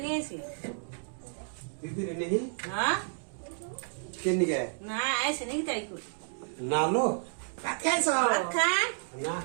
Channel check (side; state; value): left; silent; digital silence